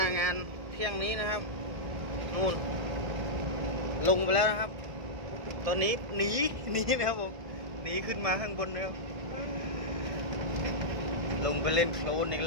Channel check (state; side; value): late; left; 1.6 ms